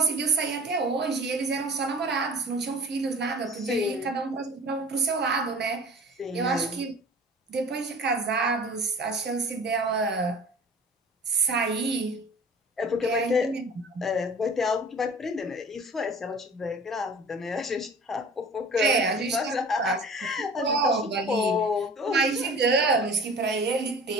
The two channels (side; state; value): both; normal; correlation 0.43